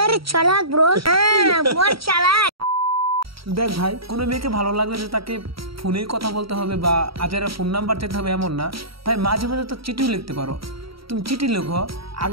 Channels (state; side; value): late; left; 0.75 ms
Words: চালাক ব্রো, মোর চালাক। দেখ ভাই, কোনো মেয়েকে ভালো লাগলে যে তাকে ফোনেই কথা বলতে হবে বা আজেরা ফোন নাম্বার চাইতে হবে এমন না ভাই। মাঝে মাঝে তো চিঠিও লিখতে পারো। তুমি চিঠি লেখো,